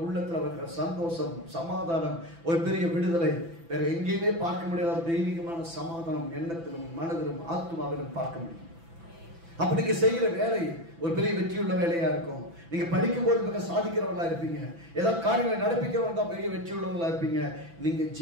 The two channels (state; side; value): late; left; 6.0 ms